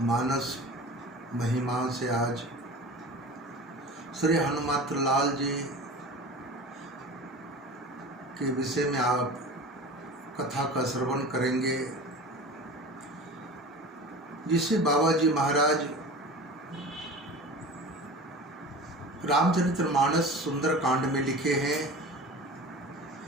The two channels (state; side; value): normal; both; correlation 0.36